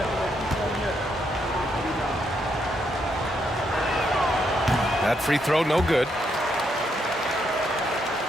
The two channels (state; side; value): normal; both; correlation 0.77